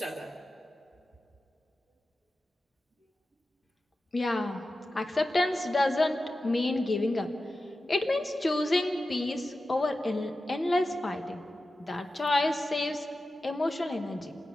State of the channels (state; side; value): normal; both; correlation 0.93